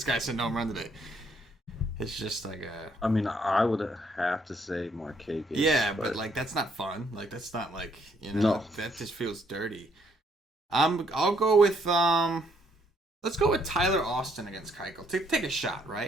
guy said no home run today. It's just like a. I mean, I would have to say Marquez. Yeah, but like that's not fun. Like that's not like, you know, no. That just feels dirty. I'll go with let's go with Tyler Austin against Keuchel. Take a shot,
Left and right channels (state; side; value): normal; both; correlation 0.69